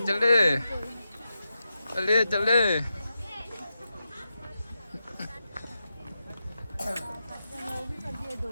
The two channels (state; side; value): inverted; both; correlation -0.89